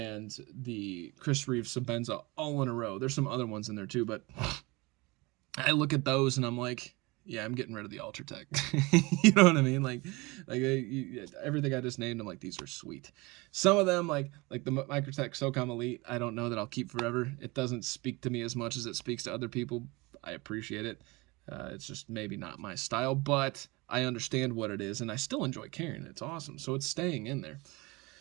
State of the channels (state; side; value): quieter; left; 24.4 dB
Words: the Chris Reeve Sabenza all in a row. There's some other ones in there too, but I look at those and I'm like, yeah, I'm getting rid of the Ultratech. You know what I mean? Like everything I just named, I'm like, these are sweet. Some of them, like the Microtech SOCOM Elite, I don't know that I'll keep forever. It doesn't speak to me as much as it speaks to other people. I appreciate it. It's just maybe not my style, but I understand what it is, and I still enjoy carrying it. It's awesome, so it's staying in there.